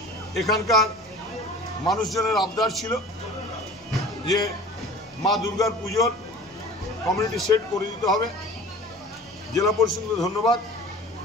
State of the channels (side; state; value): both; normal; correlation 0.42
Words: এখানকার মানুষজনের আবদার ছিল যে মা দুর্গার পুজোর কমিউনিটি সেট করে দিতে হবে। জেলা পরিষদকে ধন্যবাদ